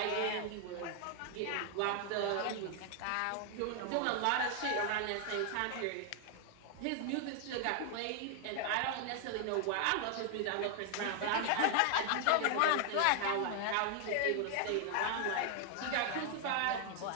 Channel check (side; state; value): both; different; correlation 0.00